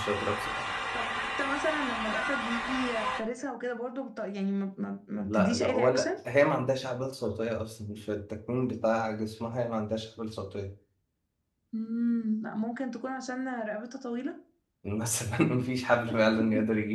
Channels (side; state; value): both; identical; correlation 1.00